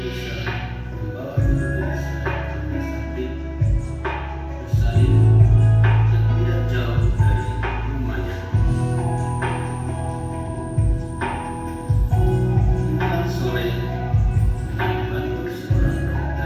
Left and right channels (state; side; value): identical; both; correlation 1.00